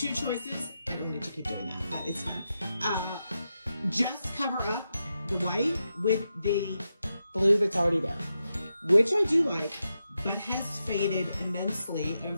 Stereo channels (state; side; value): inverted; both; correlation -0.87